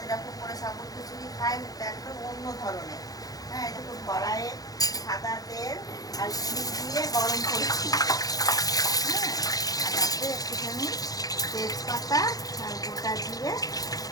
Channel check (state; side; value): late; right; 0.18 ms